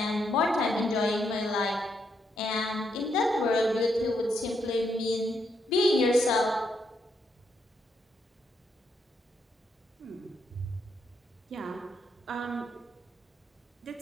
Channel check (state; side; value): normal; both; correlation 0.78